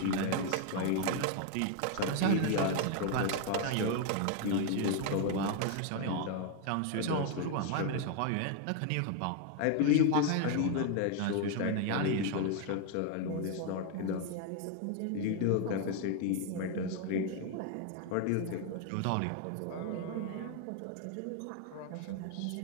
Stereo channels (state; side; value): different; both; correlation 0.01